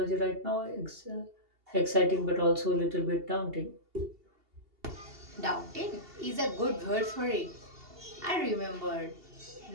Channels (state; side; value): late; left; 2.8 ms